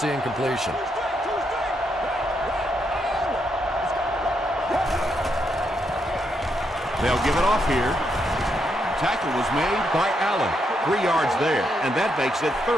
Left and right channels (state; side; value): normal; both; correlation 0.79